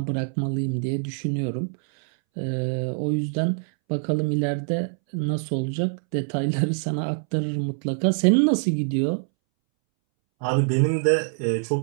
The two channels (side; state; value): left; silent; 62 dB below the other